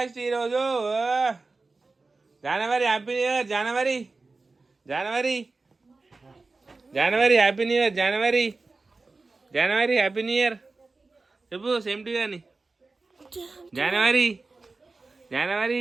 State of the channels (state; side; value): quieter; left; 3.7 dB